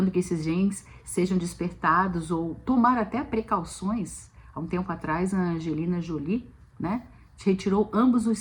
que esses genes sejam despertados ou tomar até precauções. Há um tempo atrás, a Angelina Jolie, né, retirou ambos os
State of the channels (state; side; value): identical; both; correlation 1.00